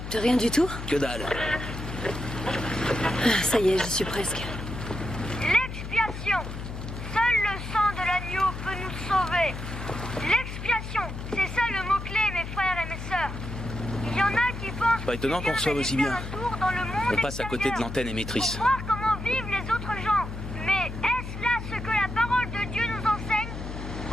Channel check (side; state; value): left; noise; hum, 8 dB below the sound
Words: rien du tout? Que dalle. Ah, ça y est, j'y suis presque. L'expiation. Seul le sang de l'agneau peut nous sauver. L'expiation, c'est ça le mot-clé, mes frères et mes sœurs. Il y en a qui pensent... Pas étonnant qu'on reçoive aussi bien. On passe à côté de l'antenne l'antenne émettrice. pour voir comment vivent les autres gens. Mais est-ce là ce que la parole de Dieu nous enseigne?